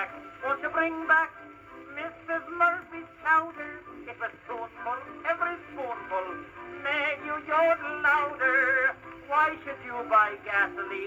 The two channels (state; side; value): identical; both; correlation 1.00